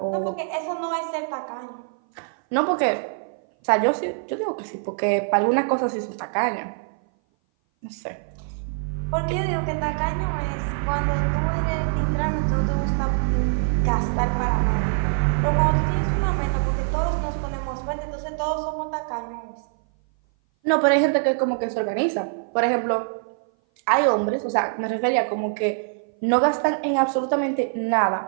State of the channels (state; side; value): silent; left; 58 dB below the other